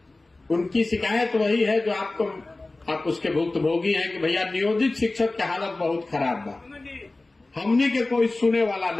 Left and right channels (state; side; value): quieter; right; 3.1 dB